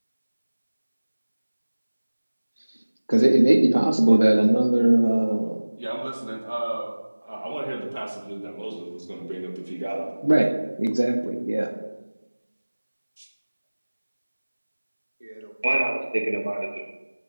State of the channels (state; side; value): inverted; both; correlation -1.00